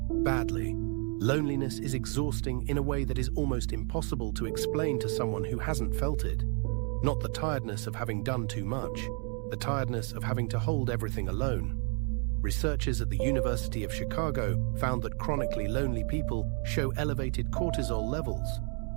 Badly. Loneliness is exhausting in a way that is almost impossible to explain to someone who hasn't felt it. Not the tiredness of having done too much, the tiredness of having to hold everything alone. Researchers at the University of Chicago found that chronically lonely people show elevated cortisol levels,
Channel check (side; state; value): left; quieter; 39.3 dB